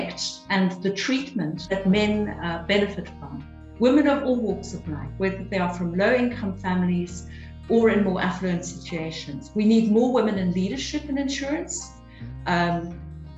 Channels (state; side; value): identical; both; correlation 1.00